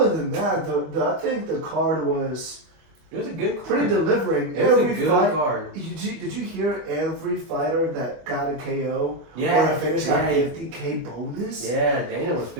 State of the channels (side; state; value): left; late; 25 ms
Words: than that, I think the card was It was a good card. pretty delivering. It was a Every good fight. card. Did you hear every fighter that got a KO or Yeah. a finish got 50K bonus? Yeah, Dana was